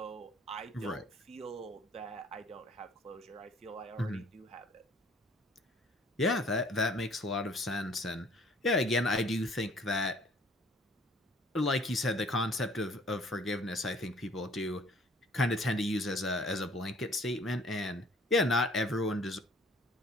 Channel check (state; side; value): normal; both; correlation 0.56